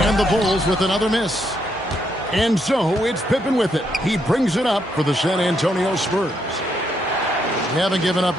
And the Bulls with another miss. And so it's Pippen with it. He brings it up for the San Antonio Spurs. They haven't given up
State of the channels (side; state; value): both; normal; correlation 0.76